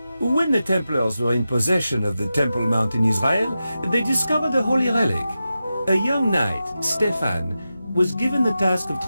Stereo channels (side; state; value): both; inverted; correlation -0.92